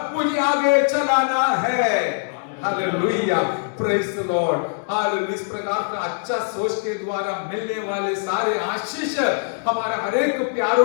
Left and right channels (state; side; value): silent; right; digital silence